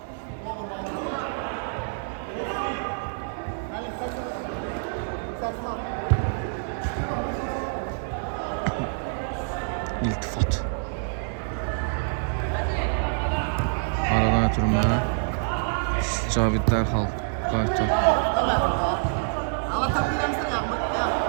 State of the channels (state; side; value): silent; left; digital silence